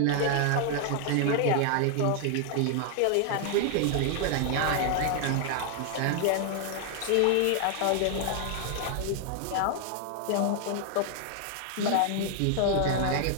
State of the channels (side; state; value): both; different; correlation 0.00